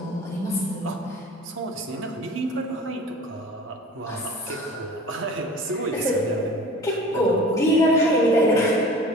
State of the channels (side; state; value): both; normal; correlation 0.42